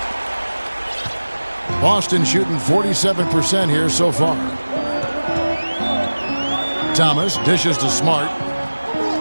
Boston shooting 47% here so far. Thomas dishes to Smart.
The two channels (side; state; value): both; inverted; correlation -1.00